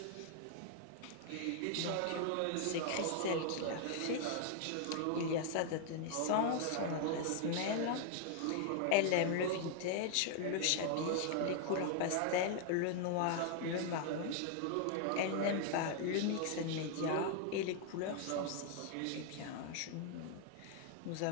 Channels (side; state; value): both; different; correlation 0.00